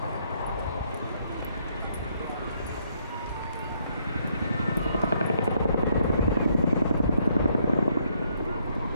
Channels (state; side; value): inverted; both; correlation -0.71